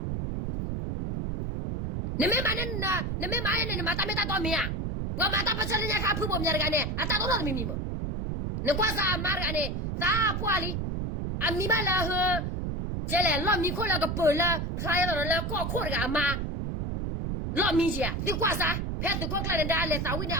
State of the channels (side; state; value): right; noise; rumble, 2 dB below the sound